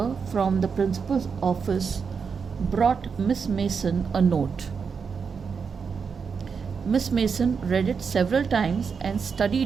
from the principal's office brought Miss Mason a note. Miss Mason read it several times and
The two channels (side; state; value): left; quieter; 5.9 dB